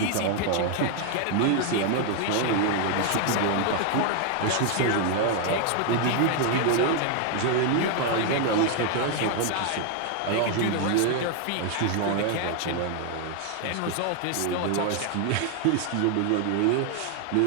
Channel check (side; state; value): both; different; correlation 0.00